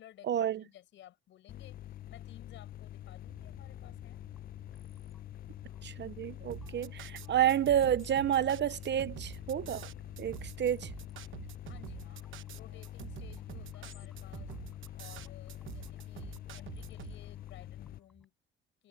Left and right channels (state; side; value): quieter; left; 7.4 dB